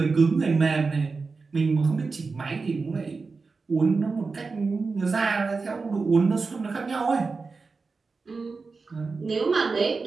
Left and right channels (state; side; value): quieter; left; 4.3 dB